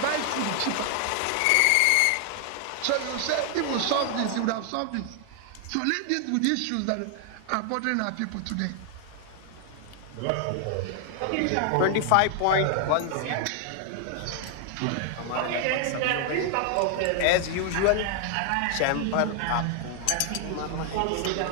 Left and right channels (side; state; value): both; different; correlation 0.00